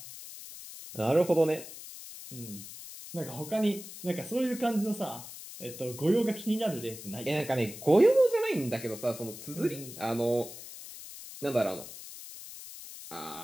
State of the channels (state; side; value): noise; left; hiss, 13 dB below the sound